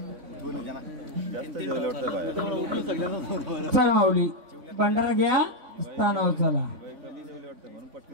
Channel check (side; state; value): left; late; 3.5 ms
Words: जण जास्त जेवले वाटतं. चला माऊली, भंडारा घ्या, स्थानावर चला.